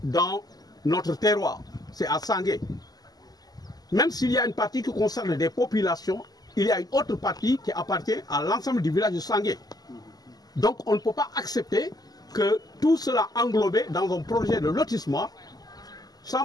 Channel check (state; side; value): late; right; 0.19 ms